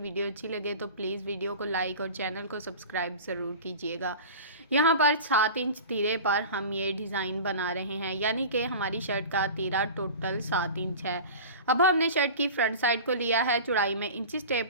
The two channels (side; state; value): both; inverted; correlation -0.35